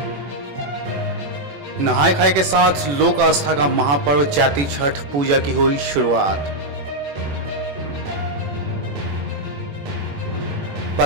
नहाय खाए के साथ लोक आस्था का महापर्व चैती छठ पूजा की हुई शुरुआत।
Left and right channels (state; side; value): late; left; 21 ms